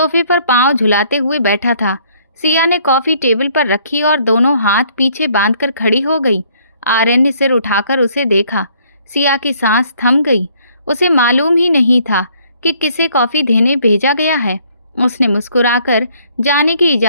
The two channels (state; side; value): inverted; both; correlation -0.63